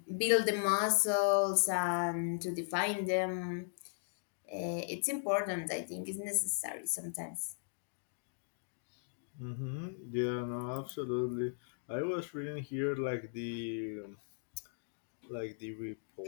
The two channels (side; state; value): right; silent; digital silence